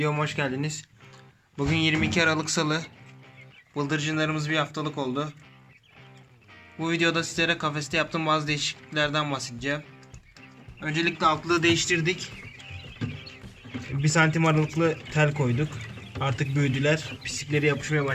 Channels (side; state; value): both; identical; correlation 1.00